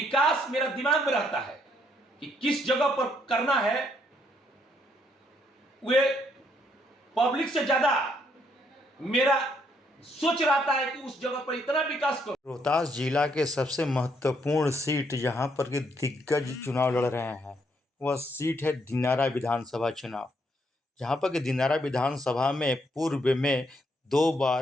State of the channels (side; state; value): both; normal; correlation 0.72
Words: मेरा दिमाग में रहता है कि किस जगह पर करना है, वे पब्लिक से ज्यादा मेरा सोच रहता है कि उस जगह पर इतना विकास करो। रोहतास जिला के सबसे महत्वपूर्ण सीट जहां पर कि दिग्गज चुनाव लड़ रहे हैं वह सीट है दिनारा विधानसभा चुनाव। जहां पर कि दिनारा विधानसभा में पूर्व में 2